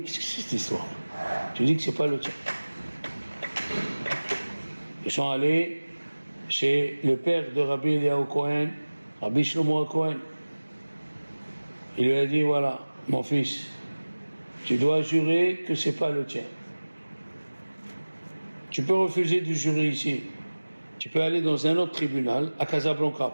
Qu'est-ce que c'est cette histoire? Tu dis que c'est pas le tien. Ils sont allés chez le père de Rabbi Eliyahu Cohen, Rabbi Shlomo Cohen. Il lui a dit, voilà, mon fils, tu dois jurer que c'est pas le tien. Tu peux refuser de jurer ici. Tu peux aller dans un autre tribunal, à Casablanca,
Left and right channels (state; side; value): inverted; both; correlation -1.00